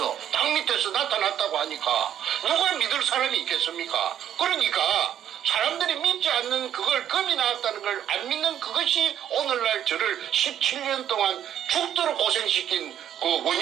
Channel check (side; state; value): left; quieter; 10.3 dB